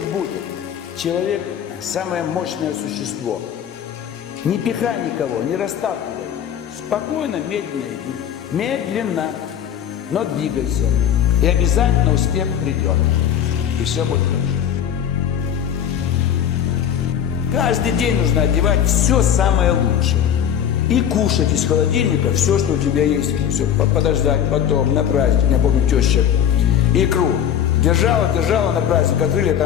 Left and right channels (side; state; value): right; quieter; 9.3 dB